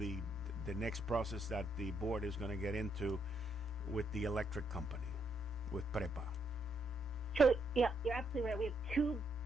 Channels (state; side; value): normal; both; correlation 0.76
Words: next process that the board is going to get into with the electric company, with PREPA? So yeah, you're absolutely right. We have two